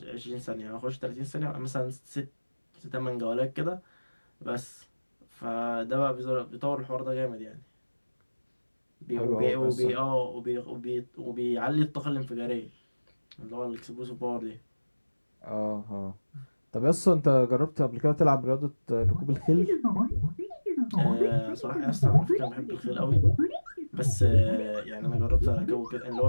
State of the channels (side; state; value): both; inverted; correlation -1.00